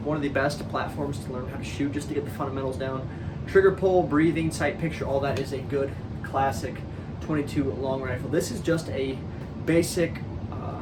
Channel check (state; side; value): identical; both; correlation 1.00